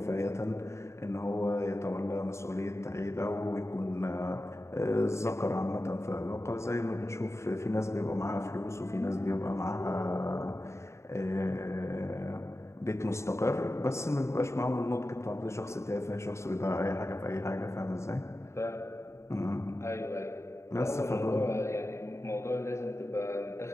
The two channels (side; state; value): right; late; 0.14 ms